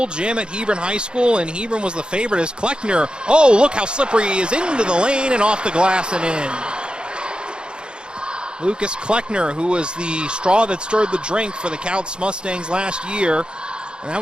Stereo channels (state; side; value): late; left; 0.051 ms